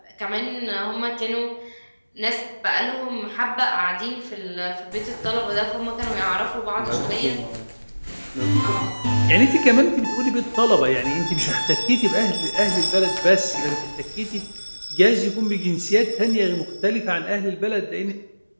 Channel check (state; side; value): inverted; both; correlation -1.00